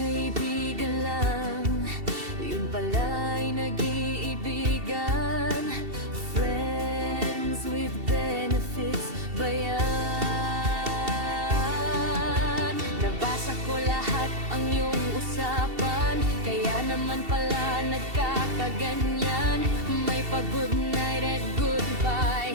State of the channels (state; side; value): late; left; 2.7 ms